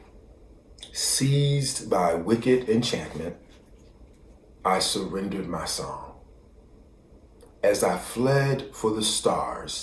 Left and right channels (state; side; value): identical; both; correlation 1.00